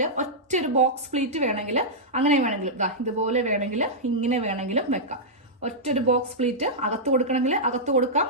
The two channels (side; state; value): both; normal; correlation -0.09